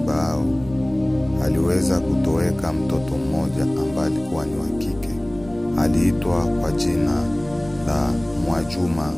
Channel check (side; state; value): right; noise; rumble, 19 dB below the sound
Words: hao aliweza kutoweka mtoto mmoja ambaye alikuwa ni wa kike. Aliitwa kwa jina la Mwajuma